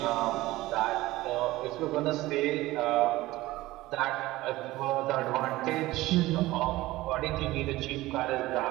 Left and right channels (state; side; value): quieter; left; 18.0 dB